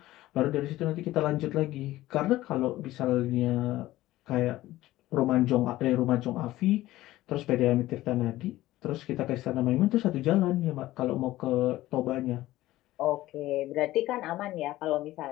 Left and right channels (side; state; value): right; quieter; 16.3 dB